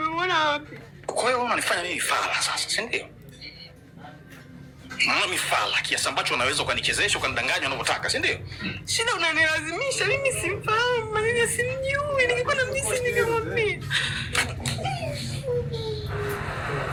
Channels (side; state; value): both; identical; correlation 1.00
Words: wapi? Kwa hiyo unanifanya mimi fala sasa, si ndio? Mimi fala kiasi ambacho unaweza ukanichezesha ukanidanganya unavyotaka, si ndio? Shida unanilazimisha, mimi simfahamu, mimi simjui. Ningekuwa na mjisi ningemwambia.